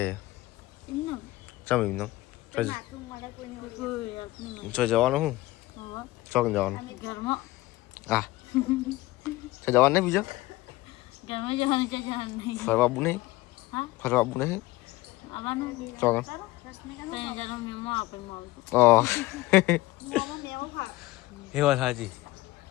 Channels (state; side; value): quieter; right; 18.9 dB